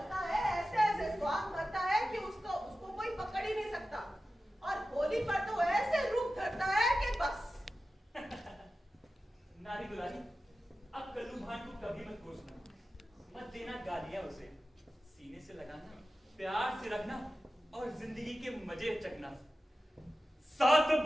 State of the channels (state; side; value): normal; both; correlation 0.94